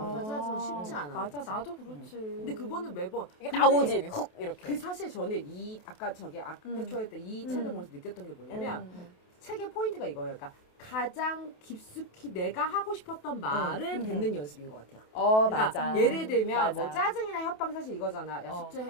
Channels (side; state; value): right; late; 28 ms